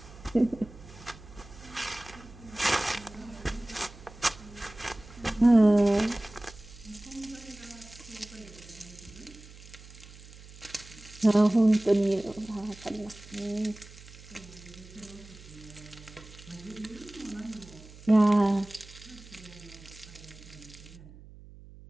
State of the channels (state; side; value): noise; right; hum, 19 dB below the sound